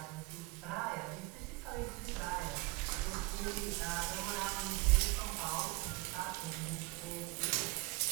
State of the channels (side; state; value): left; quieter; 23.6 dB